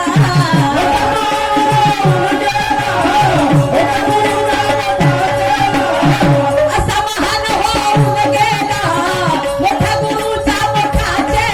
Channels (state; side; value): identical; both; correlation 1.00